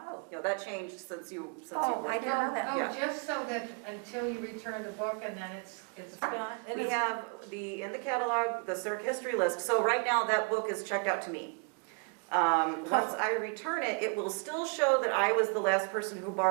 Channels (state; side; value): quieter; left; 37.1 dB